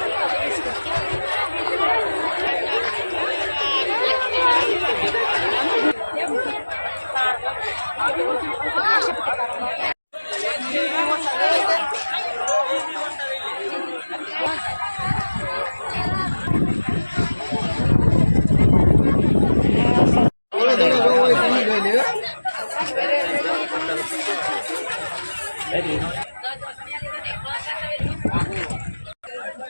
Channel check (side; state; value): both; inverted; correlation -1.00